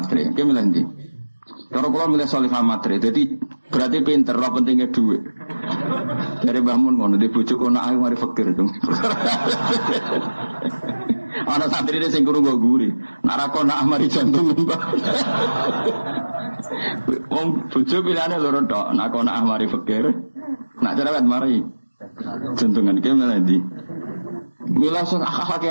ki milih ndi? Cara kula milih salihah matre. Dadi berarti pinter, ora pentingnya duit. Dari bangun ngono di bojo kono ae mari fakir dong. Ana santri ini sing krungu guri. Nak ra kono mari jantung mbah. Wong bojo pilihane loro tok. Nak kono mari fakir. Nak cerewet mari jantungan ki malah ndi. Mila sak akake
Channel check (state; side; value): inverted; both; correlation -1.00